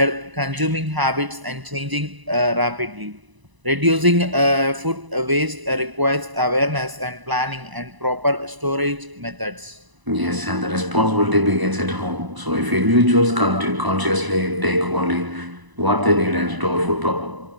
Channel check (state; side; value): late; left; 1.0 ms